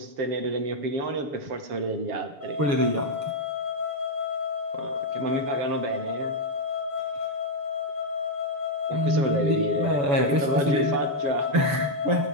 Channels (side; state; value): left; late; 7.1 ms